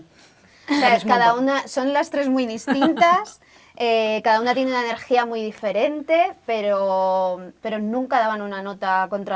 O sea, Sabes un cada montón. una, son las tres muy distintas, cada una tiene una energía muy diferente, pero nunca daban una nota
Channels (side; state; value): both; identical; correlation 1.00